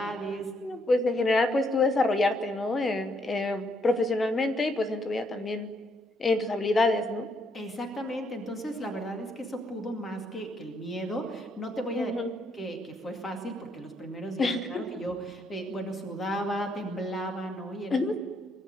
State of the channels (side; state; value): both; normal; correlation 0.73